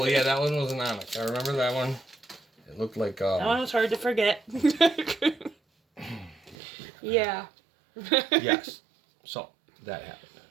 yeah, that one was an Onyx. I remember that one. It looked like. That one was hard to forget. Yeah. Yes. So that happened.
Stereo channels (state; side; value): drops out; left; at 6.6 s